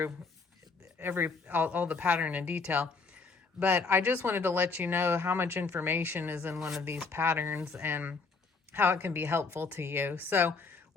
all the pattern in detail, but I just wanted to let you know how much information is in one of these patterns and how it can be helpful to you. So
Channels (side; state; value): right; quieter; 4.4 dB